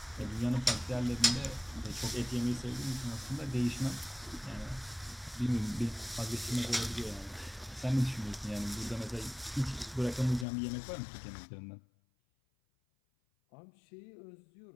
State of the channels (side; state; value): right; drops out; at 10.5 s